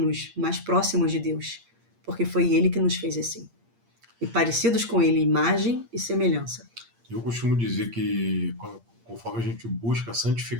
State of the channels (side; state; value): left; late; 8.6 ms